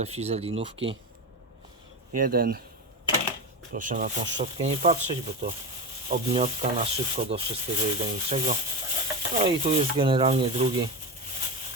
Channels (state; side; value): normal; both; correlation 0.20